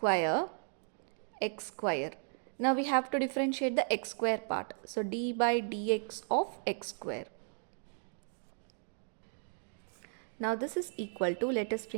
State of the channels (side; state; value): left; silent; 54 dB below the other